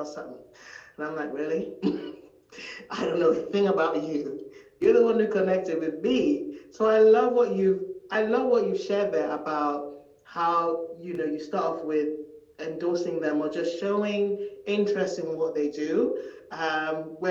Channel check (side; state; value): both; identical; correlation 1.00